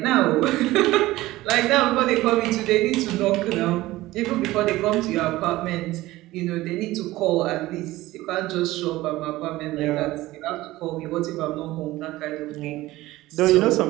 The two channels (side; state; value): left; quieter; 17.6 dB